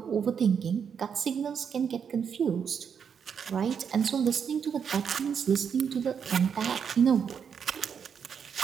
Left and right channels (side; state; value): left; quieter; 7.2 dB